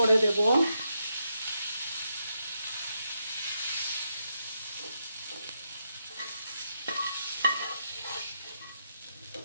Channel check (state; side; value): inverted; both; correlation -0.82